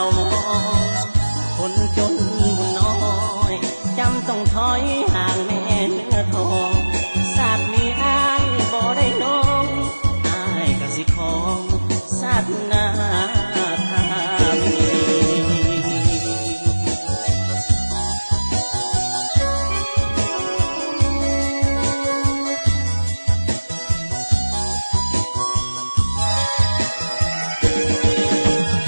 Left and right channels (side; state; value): both; inverted; correlation -1.00